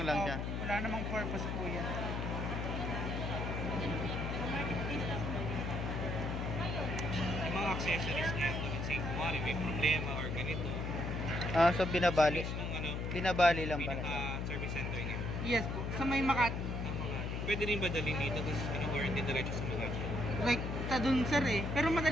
lang siya. Wala namang purpose po yan. Yung mga accessories niya, let's say, kumari may problema or ganito. Ah, so binabali. List nung ano, Binabali lang pala. pinaka-service center niya. Yes po. Sa may Makati. Ang mga, pwede rin ba dalhin dito, tapos warranty diretso sa mga. Like, sa dun, sir eh. Pero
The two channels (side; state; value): left; noise; hum, 2 dB below the sound